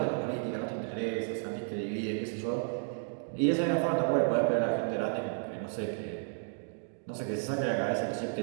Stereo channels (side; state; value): left; silent; 56 dB below the other